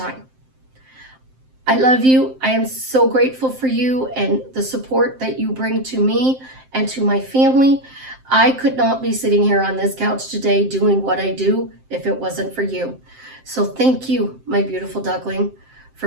I love you. I am so grateful for you and the support that you bring to me and to my family. I could not be sitting here on this couch today doing what I do if it wasn't for you. So thank you, my beautiful duckling,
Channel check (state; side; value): late; left; 7.7 ms